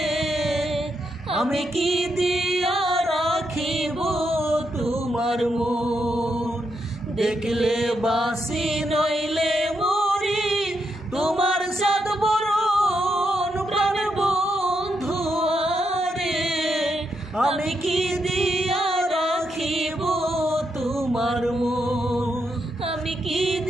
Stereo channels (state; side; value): normal; both; correlation 0.81